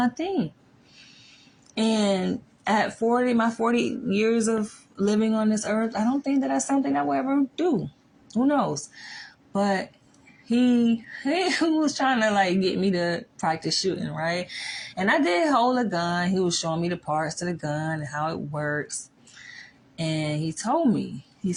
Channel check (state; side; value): identical; both; correlation 1.00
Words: thing. And at 40, my 40 years of living on this earth, I don't think that that's something I will ever do. Who knows? But he was trying to like get me to practice shooting, right? And I did hold a gun. He was showing me the parts to the gun and how it works. And he told me, he